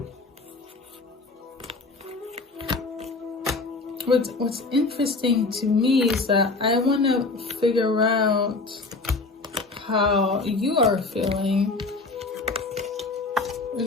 What's interesting to me is that I want to figure out how you are feeling. We're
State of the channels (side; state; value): right; quieter; 3.6 dB